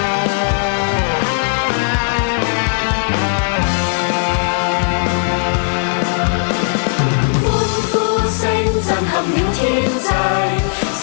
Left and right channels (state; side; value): silent; right; 59 dB below the other